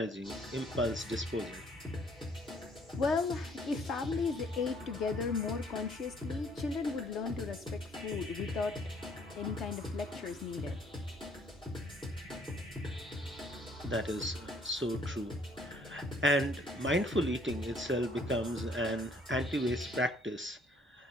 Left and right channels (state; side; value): normal; both; correlation 0.62